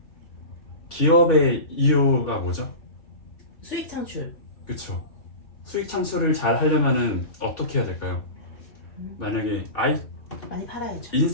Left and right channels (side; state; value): right; late; 2.8 ms